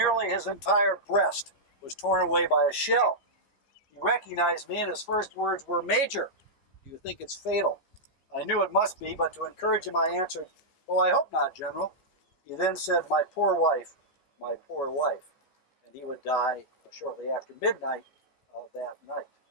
his entire breast was torn away by a shell. He recognized me, and his first words were, Major, do you think it's fatal? I knew it must be, but to encourage him, I answered, well, I hope not, General. He then said, my poor wife, my poor wife. And he would die shortly after midnight that night.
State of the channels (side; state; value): right; late; 14 ms